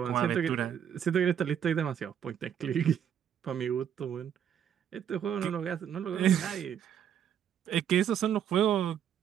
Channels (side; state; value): left; quieter; 9.0 dB